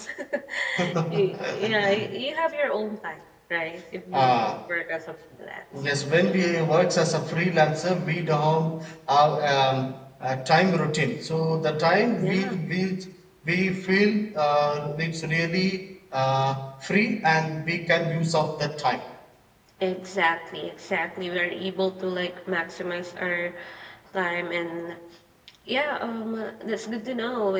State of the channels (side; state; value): both; identical; correlation 1.00